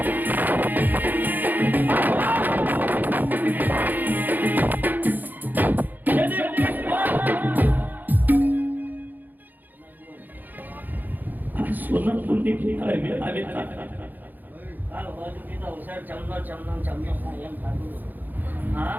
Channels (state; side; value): late; left; 0.086 ms